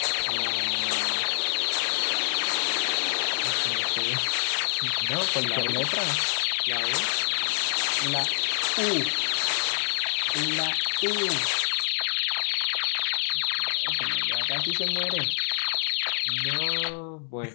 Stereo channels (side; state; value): right; silent; 61 dB below the other